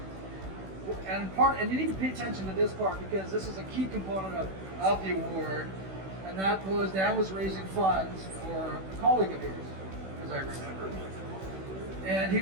And you need to pay attention to this part because this is a key component of the award. And that was, Dan was raising funds for a colleague of his, as I remember. And he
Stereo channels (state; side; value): late; left; 16 ms